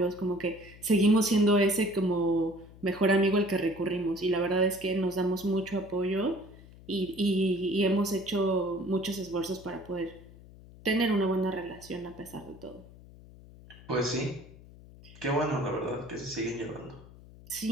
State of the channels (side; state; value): left; noise; hum, 20 dB below the sound